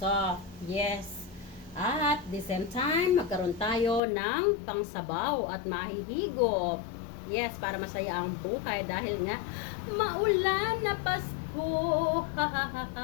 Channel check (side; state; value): right; drops out; at 4.0 s